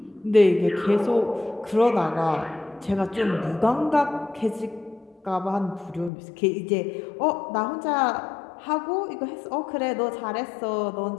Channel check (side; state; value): right; drops out; at 6.1 s